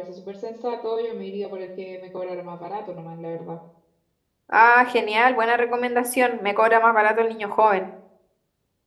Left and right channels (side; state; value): both; identical; correlation 1.00